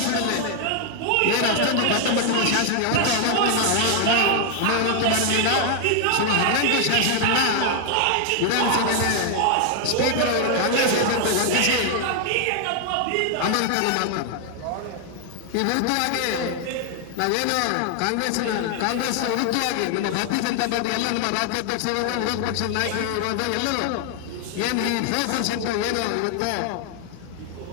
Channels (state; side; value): different; both; correlation 0.00